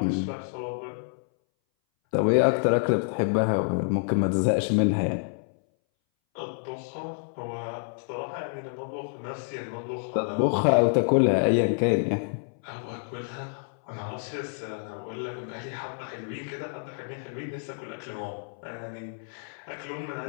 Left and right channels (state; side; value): silent; right; 59 dB below the other